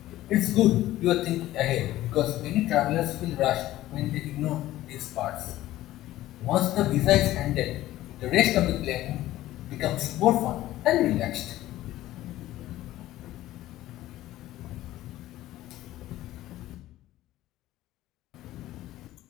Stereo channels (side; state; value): right; quieter; 15.1 dB